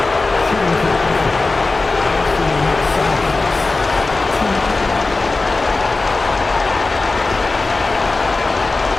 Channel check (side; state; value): right; quieter; 3.6 dB